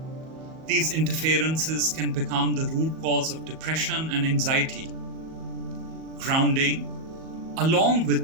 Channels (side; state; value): left; late; 38 ms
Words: These interferences can become the root cause of depression and anxiety. Grounding, along